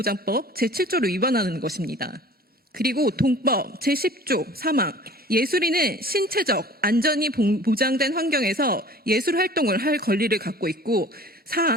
제7조를 위반하는 것입니다. 그리고 동법 제10조 3항 예술인은 신체적 안전이 보장된 환경에서 예술 활동을 할 권리를 갖고 있고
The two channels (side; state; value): both; normal; correlation 0.46